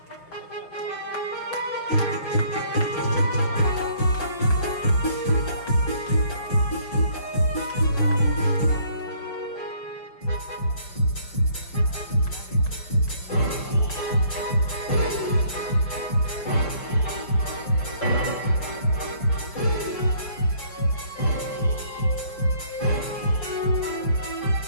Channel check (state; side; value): late; right; 5.6 ms